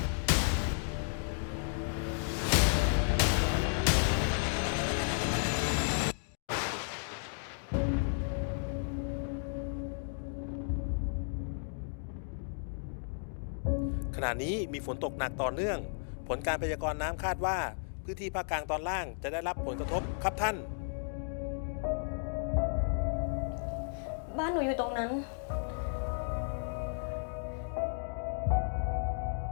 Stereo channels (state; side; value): silent; right; digital silence